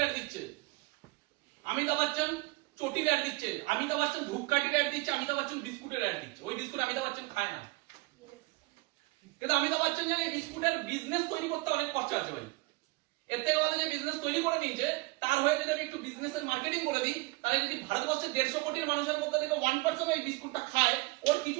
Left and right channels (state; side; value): quieter; left; 24.0 dB